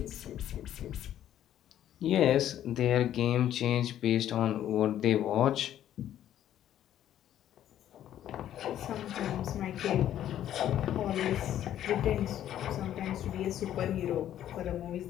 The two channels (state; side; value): quieter; right; 11.4 dB